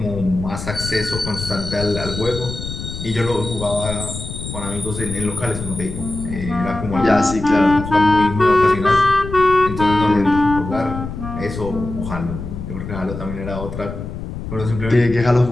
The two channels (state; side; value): noise; left; rumble, 8 dB below the sound